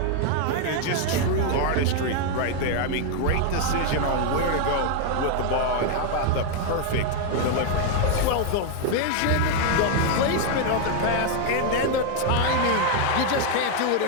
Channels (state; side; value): different; both; correlation 0.00